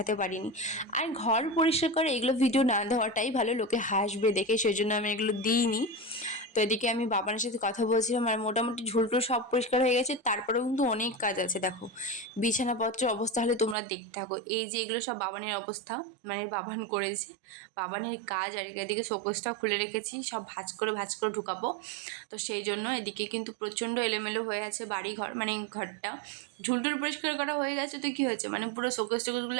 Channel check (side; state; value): left; drops out; at 13.8 s